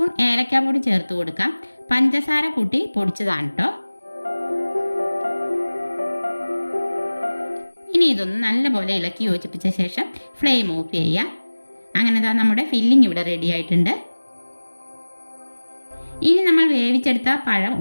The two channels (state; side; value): inverted; both; correlation -1.00